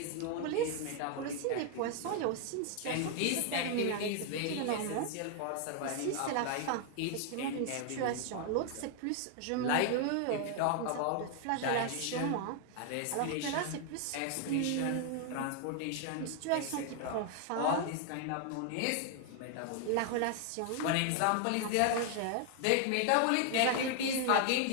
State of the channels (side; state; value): both; different; correlation 0.00